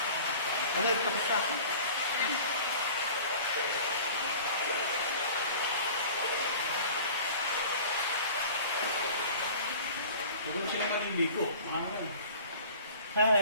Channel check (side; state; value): both; inverted; correlation -0.43